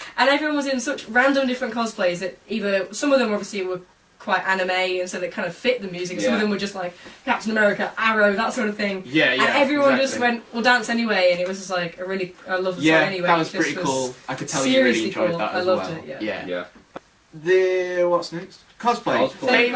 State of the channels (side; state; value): both; identical; correlation 1.00